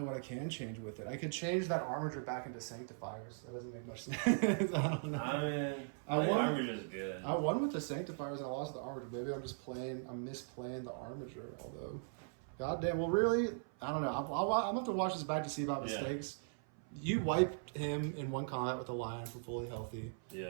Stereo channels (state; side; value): silent; left; 51 dB below the other